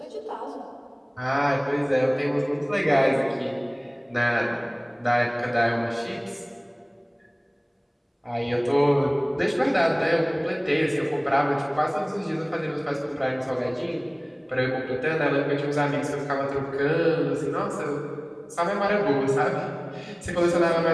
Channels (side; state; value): both; identical; correlation 1.00